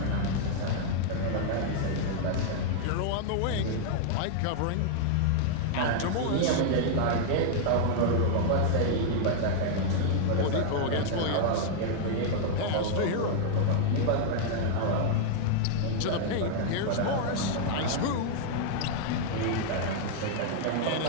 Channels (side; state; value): both; different; correlation -0.01